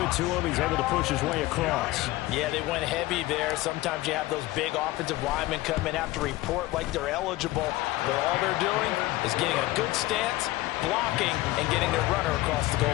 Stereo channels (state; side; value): quieter; right; 18.0 dB